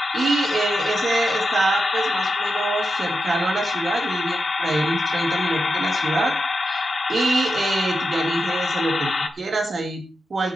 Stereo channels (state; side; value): normal; both; correlation 0.88